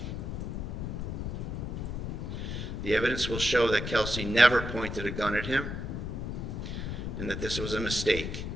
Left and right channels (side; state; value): left; noise; rumble, 4 dB below the sound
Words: The evidence will show that Kelsey never pointed a gun at him and that this was a mistake.